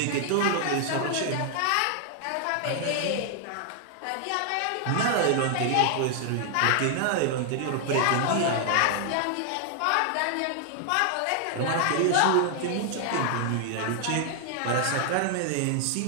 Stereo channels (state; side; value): different; both; correlation 0.00